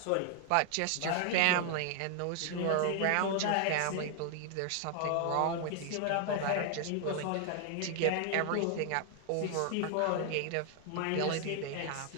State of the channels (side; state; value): both; different; correlation 0.00